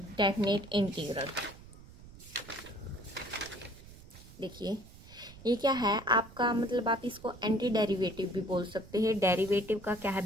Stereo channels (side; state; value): right; noise; rumble, 19 dB below the sound